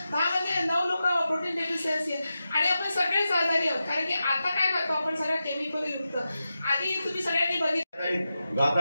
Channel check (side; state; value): both; inverted; correlation -0.91